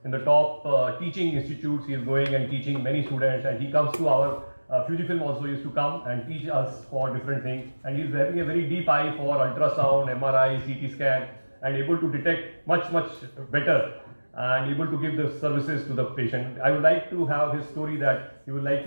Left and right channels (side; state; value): both; inverted; correlation -1.00